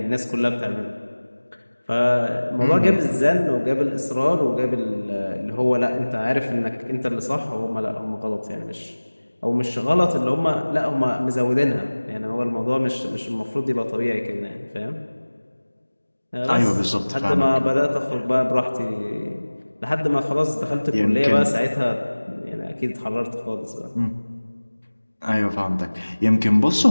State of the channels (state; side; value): inverted; both; correlation -1.00